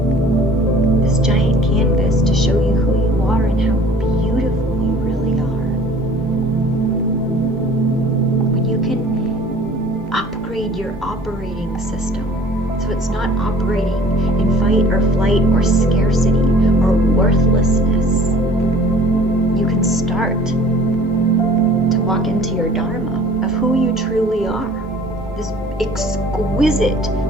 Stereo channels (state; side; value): normal; both; correlation 0.49